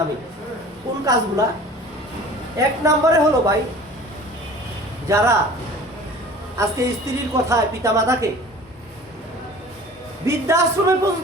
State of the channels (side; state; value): both; normal; correlation 0.43